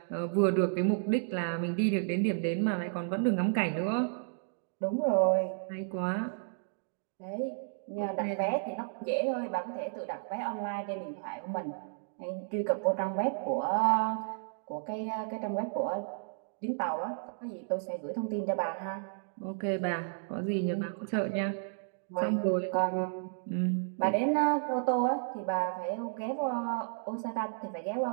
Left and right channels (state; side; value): silent; left; digital silence